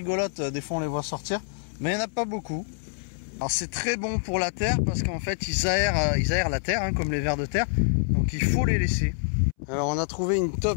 des fois on les voit sortir, mais il n'y en a pas beaucoup. Alors c'est très bon pour la terre parce qu'en fait ils aèrent la terre, hein, comme les vers de terre, donc il faut les laisser. Alors on a trouvé une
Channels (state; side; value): silent; right; 61 dB below the other